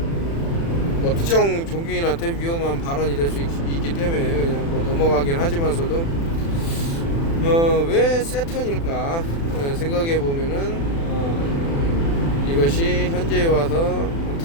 뭐 특정 종교인한테 위험한 발언이 될 수 있기 때문에 그냥 뭐 넘어가긴 하지만서도, 왜 세턴일까 생각해 보면은 이것이 현재에 와서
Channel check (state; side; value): late; right; 36 ms